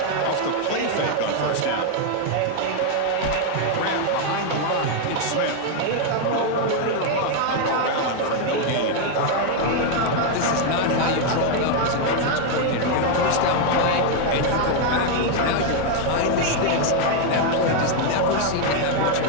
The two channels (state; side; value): different; both; correlation 0.00